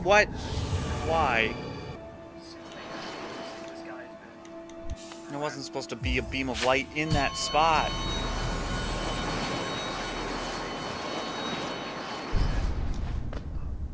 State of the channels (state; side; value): identical; both; correlation 1.00